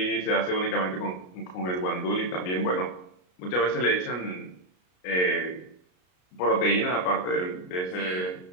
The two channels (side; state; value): right; late; 33 ms